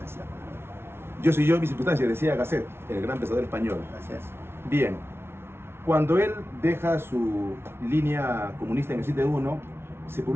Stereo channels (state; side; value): late; left; 0.12 ms